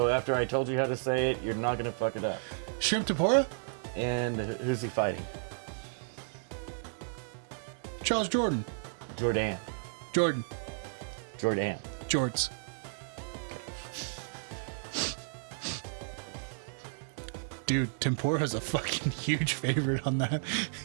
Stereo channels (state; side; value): silent; left; digital silence